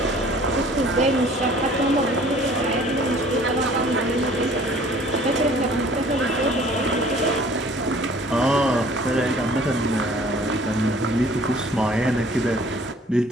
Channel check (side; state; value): both; normal; correlation 0.52